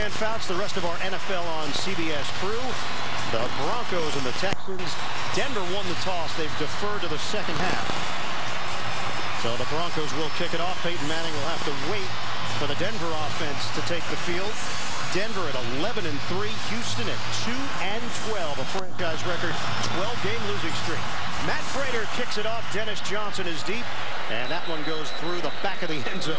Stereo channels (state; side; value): identical; both; correlation 1.00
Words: Fouts, the rest of our NFL on CBS crew. The Broncos and the Texans. Denver won the toss. They've deferred to the second half. So the Broncos will kick it off. Peyton Manning will have to wait for the Denver offense to take the field. Denver at 11-3, Houston at 2-12, a franchise record 12-game losing streak. Matt Prater kicks it off. Dennis Johnson is deep, and that one goes through the back of the end